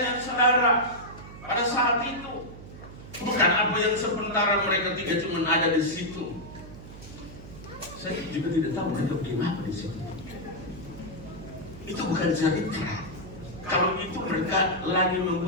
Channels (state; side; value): noise; right; hum, 15 dB below the sound